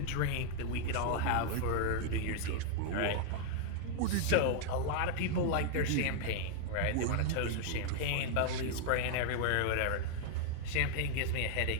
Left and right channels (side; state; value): both; different; correlation -0.01